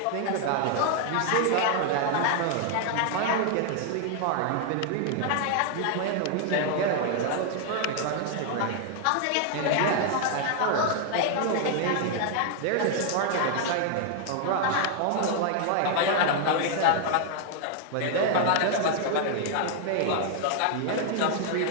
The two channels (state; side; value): different; both; correlation 0.00